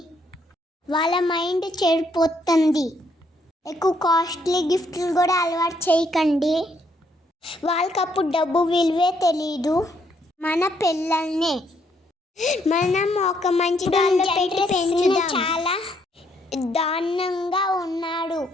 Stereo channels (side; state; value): both; normal; correlation 0.71